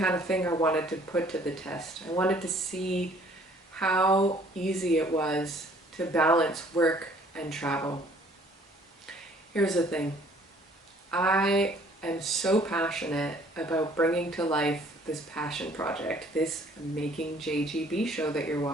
of thing I wanted to put to the test. I wanted to see how easy it was to balance work and travel. Here's the thing. I am so passionate about bringing to life this passion project, this Making JGB show that you're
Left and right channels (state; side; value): normal; both; correlation 0.58